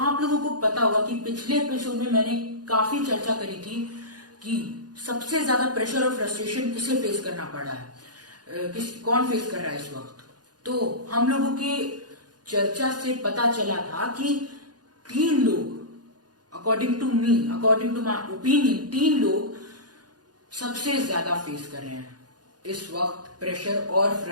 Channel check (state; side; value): late; left; 0.69 ms